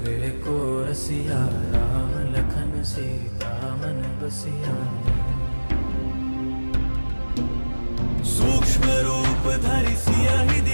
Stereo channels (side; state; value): both; inverted; correlation -1.00